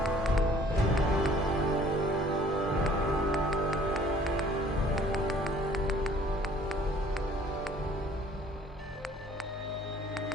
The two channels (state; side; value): normal; both; correlation 0.55